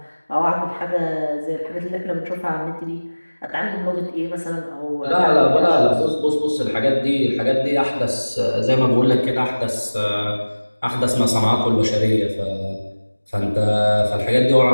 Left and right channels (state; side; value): inverted; both; correlation -1.00